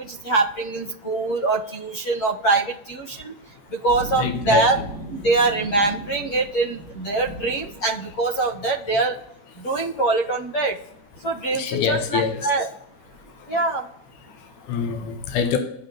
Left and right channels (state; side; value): late; right; 9.7 ms